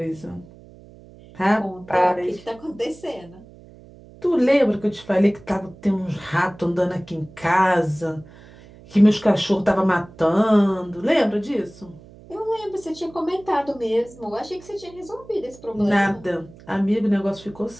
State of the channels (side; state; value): right; noise; hum, 22 dB below the sound